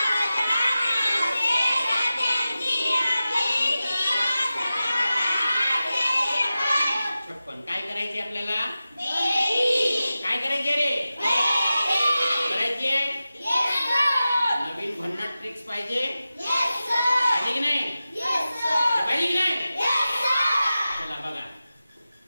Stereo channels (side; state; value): both; inverted; correlation -0.94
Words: काय करायचे आपल्याला? काय करायचे रे? करायचे नवीन भन्नाट ट्रिक्स पाहिजे पाहिजे की नाही? पाहिजे की नाही? चला बघा,